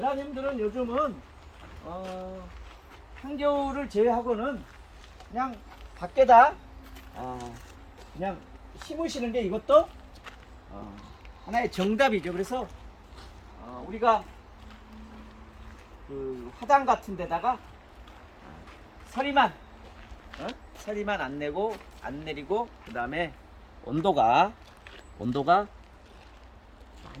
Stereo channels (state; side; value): identical; both; correlation 1.00